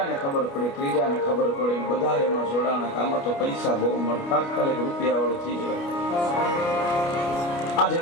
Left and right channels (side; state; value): right; late; 29 ms